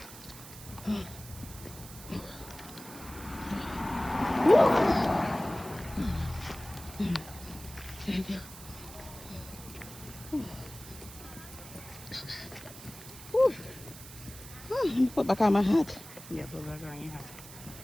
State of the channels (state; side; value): noise; right; hiss, 15 dB below the sound